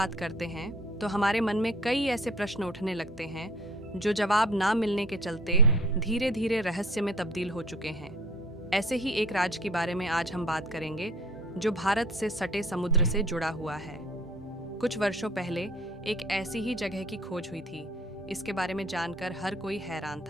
करते हैं तो हमारे मन में कई ऐसे प्रश्न उठने लगते हैं जो जवाब ना मिलने के चलते धीरे धीरे रहस्य में तब्दील हो चुके हैं। ऐसे ही एक राज्य के बारे में आज हम बात करेंगे जो भारत से सटे समुद्र से जुड़ा हुआ है। कुछ वर्षों पहले एक ऐसी ही जगह की खोज हुई थी। इसके बारे में जानकर हर कोई हैरान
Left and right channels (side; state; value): both; normal; correlation 0.50